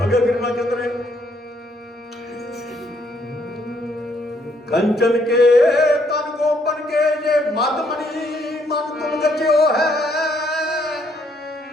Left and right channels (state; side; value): normal; both; correlation 0.70